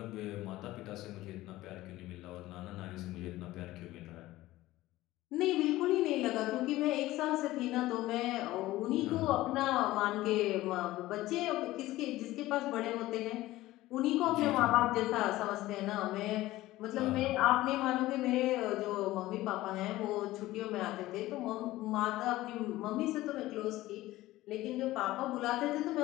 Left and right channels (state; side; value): quieter; right; 16.9 dB